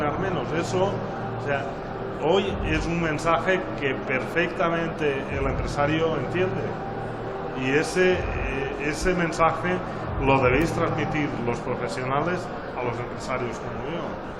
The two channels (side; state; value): both; identical; correlation 1.00